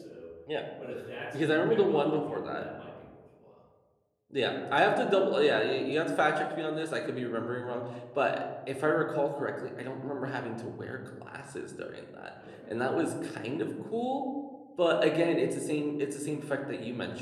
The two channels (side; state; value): both; identical; correlation 1.00